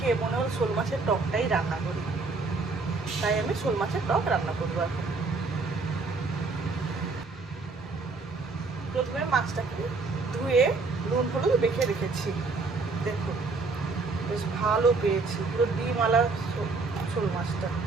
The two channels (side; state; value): left; quieter; 4.0 dB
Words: মনে হলো শোল মাছের টকটাই রান্না করি। তাই আমি শোল মাছের টক রান্না করবো এখন। প্রথমে মাছটাকে ধুয়ে নুন হলুদ মেখে রেখেছি। দেখুন বেশ ভালো পেয়েছি, পুরো ডিমওয়ালা শোল মাছটা